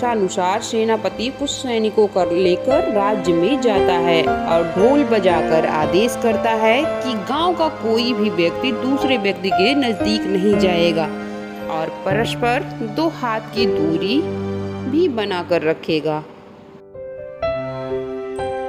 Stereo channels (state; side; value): identical; both; correlation 1.00